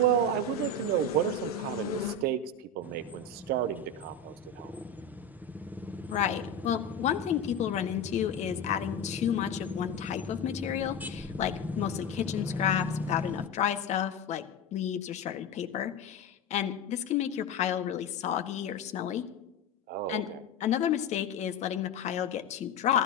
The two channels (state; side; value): quieter; right; 3.5 dB